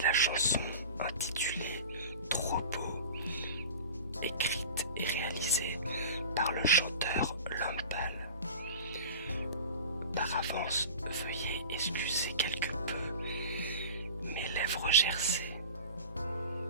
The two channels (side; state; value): both; inverted; correlation -0.35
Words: la chanson intitulée Trop beau, écrite et réalisée par le chanteur L'Homme Pâle. Par avance, veuillez excuser quelque peu mes lèvres gercées.